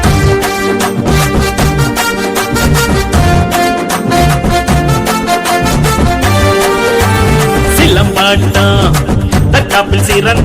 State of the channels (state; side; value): identical; both; correlation 1.00